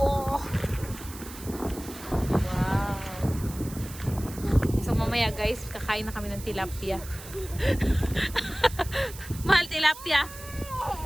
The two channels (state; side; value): noise; right; hiss, 15 dB below the sound